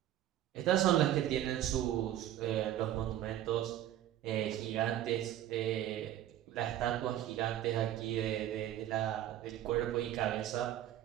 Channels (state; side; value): quieter; left; 12.3 dB